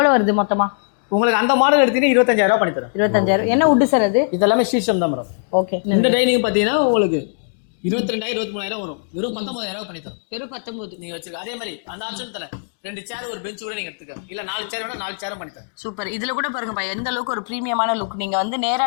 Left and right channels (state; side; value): silent; right; 65 dB below the other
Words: வருது மொத்தமா? உங்களுக்கு அந்த மாடல் எடுத்தீங்கன்னா 25,000 பண்ணி தரேன். 25,000. என்ன வுட் சார் அது? இதெல்லாமே சீசம் தான் மேடம். ஓகே. இந்த டைனிங் பாத்தீங்கன்னா உங்களுக்கு 22,000 23,000 வரும். வெறும் 19,000 பண்ணி தரோம். வெறும் 19 நீங்க வச்சிருக்க. அதே மாதிரி அந்த ஆப்ஷன் தரேன். 2 சேர் ஒரு பெஞ்ச் கூட நீங்க எடுத்துக்க. இல்ல 4 சேர் வேணா 4 சேரும் பண்ணி தரேன். சூப்பர். இதுல கூட பாருங்கப்பா எந்த அளவுக்கு ஒரு பிரீமியமான லுக். நீங்க வந்து நேரா